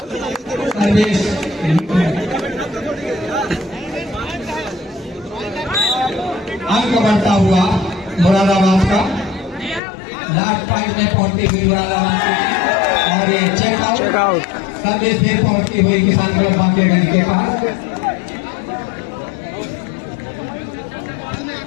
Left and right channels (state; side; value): drops out; right; at 9.8 s